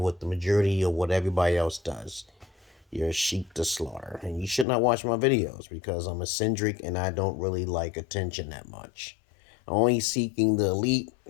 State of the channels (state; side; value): drops out; right; at 4.7 s